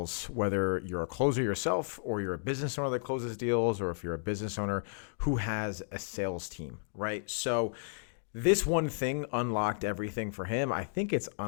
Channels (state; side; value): silent; right; digital silence